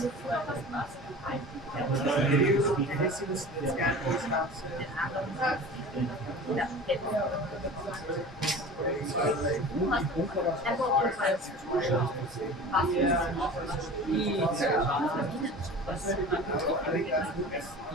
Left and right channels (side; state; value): both; normal; correlation 0.37